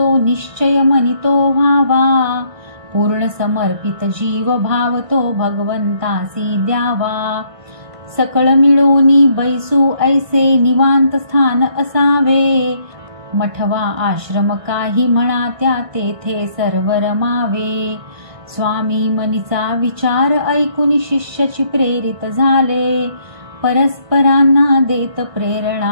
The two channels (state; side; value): late; left; 1.6 ms